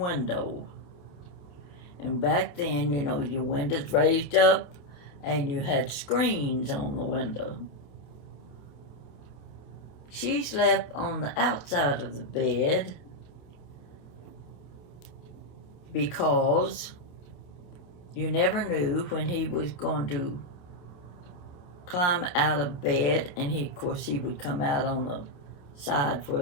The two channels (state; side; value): late; right; 28 ms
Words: And back then, you know, your windows raised up and you had screens on the window. She slept on the outside of the bed because you never knew when he was going to climb out of bed, and of course he would come out on the side